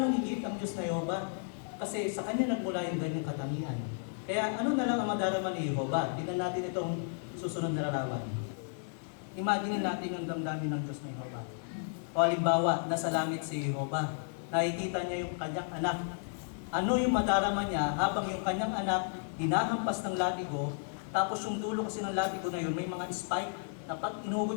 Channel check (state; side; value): silent; right; 56 dB below the other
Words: higit ang Diyos na Jehovah. Kasi sa Kanya nagmula yung ganyang katangian. Kaya ano na lang ang madarama ni Jehovah? Tignan natin itong susunod na larawan. Imagine natin ang damdamin ng Diyos na Jehovah. O halimbawa, nasa langit si Jehovah. Nakikita niya yung kanyang anak. Ano yung madarama niya habang yung kanyang anak hinahampas ng latigo, tapos yung dulo kasi ng latigo na yun, may mga spike na pag